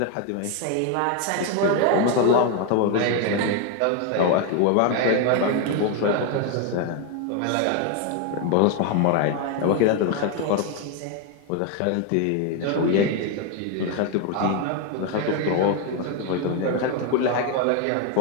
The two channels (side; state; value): both; different; correlation 0.01